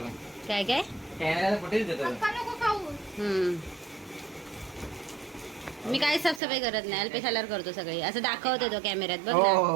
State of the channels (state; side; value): drops out; left; at 6.4 s